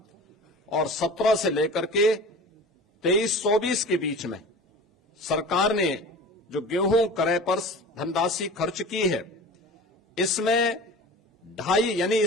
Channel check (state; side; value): normal; both; correlation 0.37